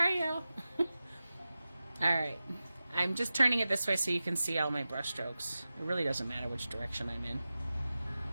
Al. Alright. I'm just turning it this way so you can see all my brush strokes. It really doesn't matter which direction I'm in.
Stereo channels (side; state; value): both; inverted; correlation -0.95